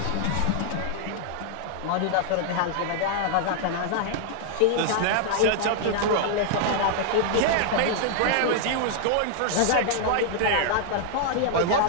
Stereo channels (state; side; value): different; both; correlation -0.01